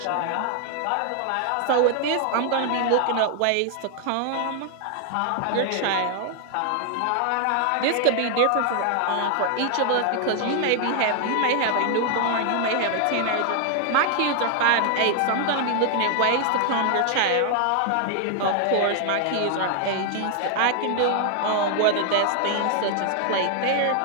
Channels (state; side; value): different; both; correlation 0.00